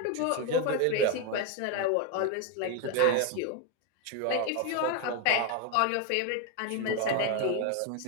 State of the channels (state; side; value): different; both; correlation 0.01